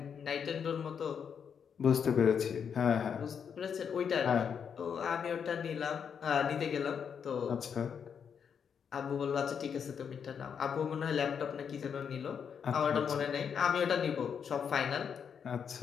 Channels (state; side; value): quieter; right; 7.2 dB